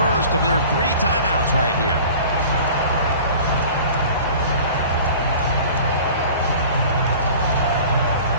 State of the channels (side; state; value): both; inverted; correlation -0.43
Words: of their 3 timeouts right here.